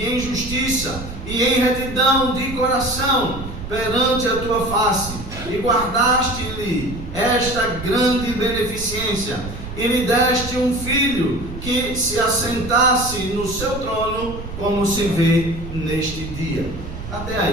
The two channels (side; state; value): right; noise; rumble, 10 dB below the sound